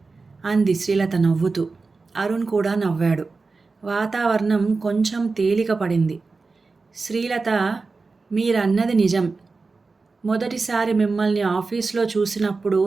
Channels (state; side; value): quieter; left; 4.1 dB